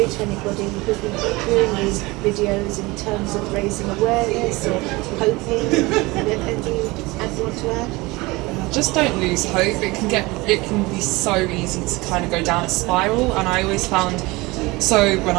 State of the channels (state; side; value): quieter; left; 22.6 dB